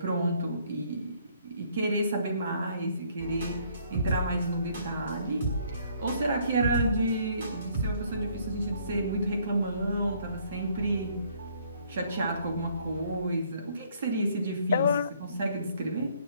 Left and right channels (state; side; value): inverted; both; correlation -0.64